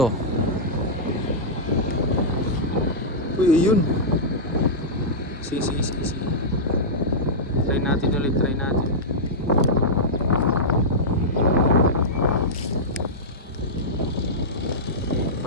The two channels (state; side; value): normal; both; correlation -0.10